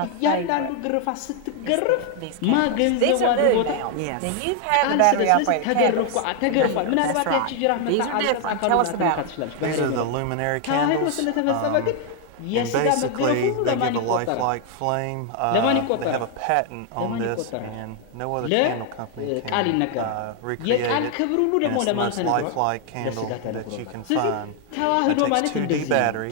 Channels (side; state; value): both; different; correlation 0.00